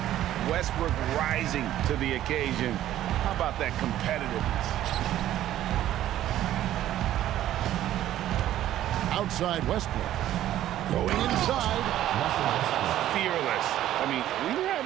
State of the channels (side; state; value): left; quieter; 12.8 dB